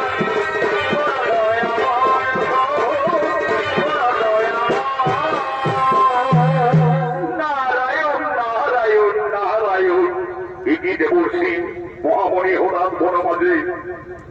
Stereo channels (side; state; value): both; identical; correlation 1.00